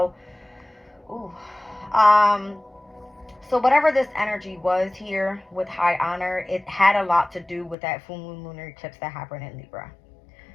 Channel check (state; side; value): drops out; right; at 7.8 s